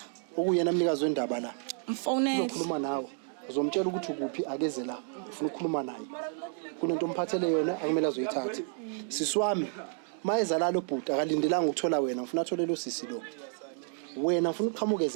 okuyena mnikazi wendaba la Mfonele. uzokhuluma nawe uzomtshela ukuthi ukuphi akeze la ufuna ukukhuluma naye kunento omphathele yona akumele azoyithatha siswami mayeza la lo bhuti akalindelanga ukuthola wena ufuna athole lo sisi lo wena ufuna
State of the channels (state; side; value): silent; left; 55 dB below the other